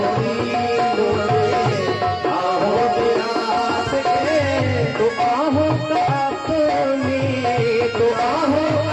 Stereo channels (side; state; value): both; identical; correlation 1.00